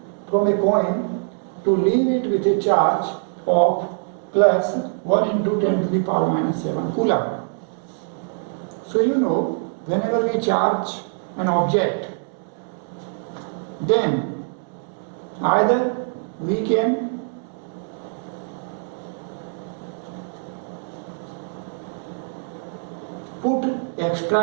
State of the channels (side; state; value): left; silent; 63 dB below the other